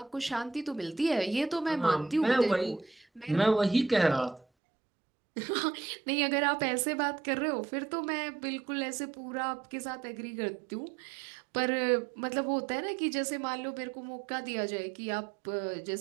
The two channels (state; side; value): drops out; left; at 4.5 s